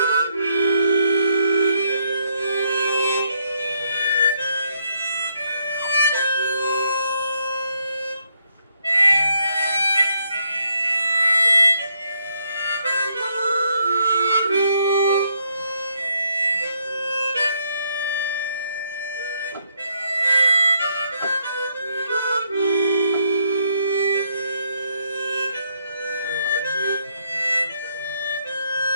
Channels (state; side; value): inverted; both; correlation -0.73